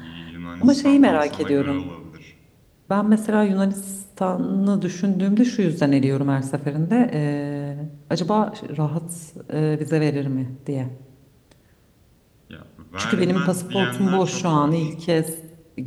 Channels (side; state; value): both; identical; correlation 1.00